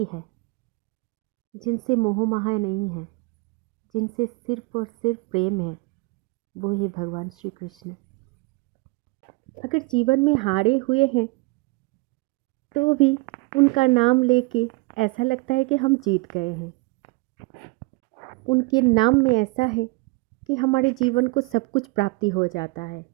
है जिनसे मोह माया नहीं है, जिनसे सिर्फ और सिर्फ प्रेम है, वो है भगवान श्री कृष्ण। अगर जीवन में हारे हुए हैं तो भी उनका नाम लेके ऐसा लगता है कि हम जीत गए हैं। उनके नाम में ऐसा है कि हमारे जीवन को सब कुछ प्राप्ति हो जाता है।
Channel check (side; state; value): left; quieter; 25.9 dB